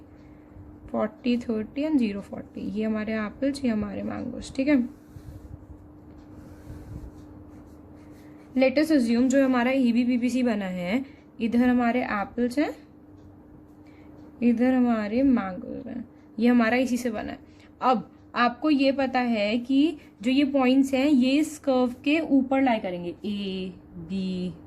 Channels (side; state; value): both; identical; correlation 1.00